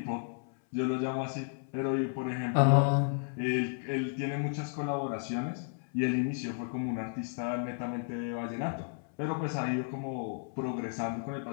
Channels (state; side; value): silent; right; 56 dB below the other